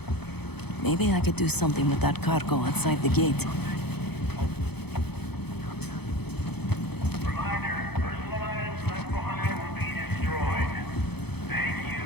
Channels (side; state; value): right; late; 0.98 ms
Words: Maybe I could do something with that cargo outside the gate.